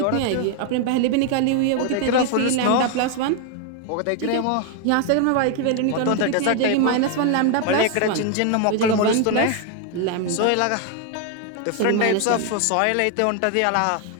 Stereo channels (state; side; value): different; both; correlation 0.01